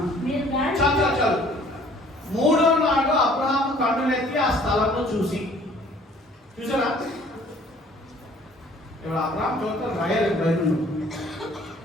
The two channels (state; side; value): normal; both; correlation 0.55